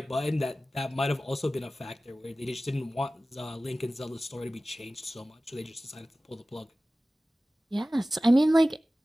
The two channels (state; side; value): normal; both; correlation 0.96